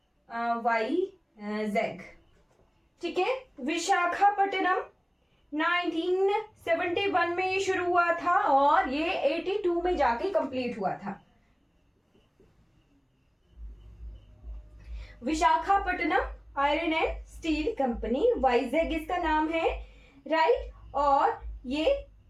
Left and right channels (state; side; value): identical; both; correlation 1.00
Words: ठीक है। विशाखापट्टनम 1971 में ये शुरू हुआ था और ये 82 में जाके कंप्लीट हुआ था। Visakhapatnam iron and steel company, Vizag इसका नाम है, राइट। और ये